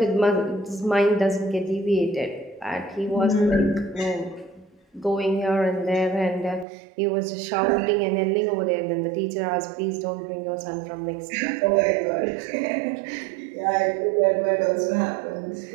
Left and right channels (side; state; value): left; drops out; at 6.7 s